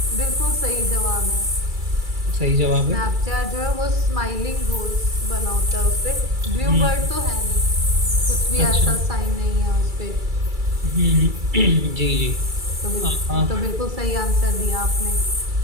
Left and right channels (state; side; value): late; left; 2.3 ms